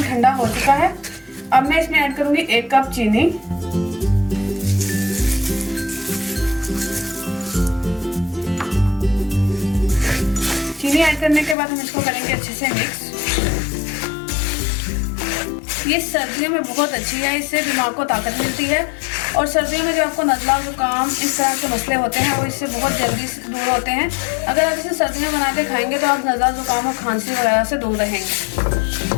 ठंडा हो चुका है। अब मैं इसमें ऐड करूँगी 1 कप चीनी। चीनी ऐड करने के बाद हम इसको करेंगे अच्छे से मिक्स। ये सर्दियों में बहुत अच्छी है, इससे दिमाग को ताकत मिलती है और सर्दियों में जो आपको नज़ला, जुकाम इस तरह के मसले होते हैं वो इससे बहुत जल्दी से दूर होते हैं। अगर आप इसे सर्दियों में बना के खाएंगे तो आप नज़ला, जुकाम और खांसी वगैरह से दूर रहेंगे।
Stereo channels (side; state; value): right; drops out; at 11.6 s